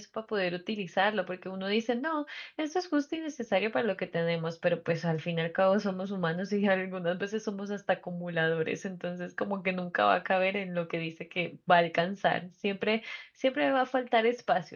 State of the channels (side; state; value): both; identical; correlation 1.00